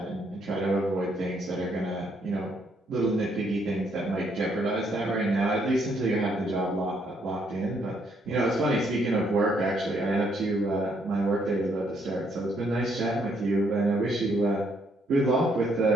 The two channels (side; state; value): both; normal; correlation 0.71